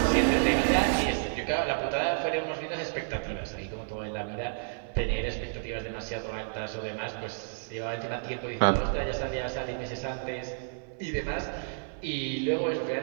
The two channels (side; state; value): left; silent; digital silence